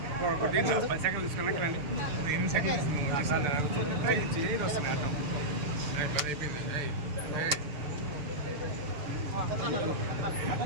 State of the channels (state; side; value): late; left; 6.8 ms